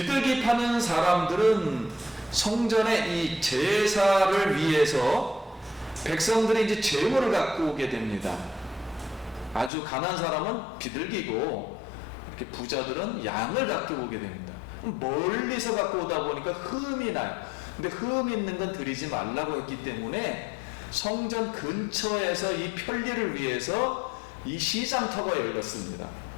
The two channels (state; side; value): drops out; right; at 9.7 s